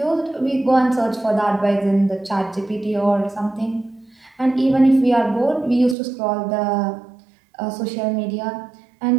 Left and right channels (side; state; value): left; drops out; at 6.0 s